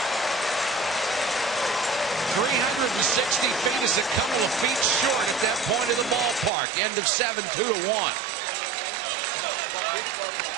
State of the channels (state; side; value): drops out; left; at 6.5 s